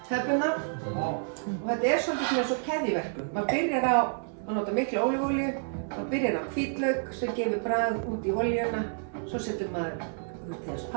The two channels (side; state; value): left; silent; digital silence